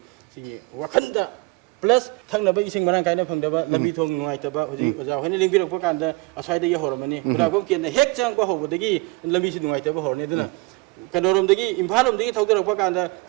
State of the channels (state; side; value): quieter; left; 24.9 dB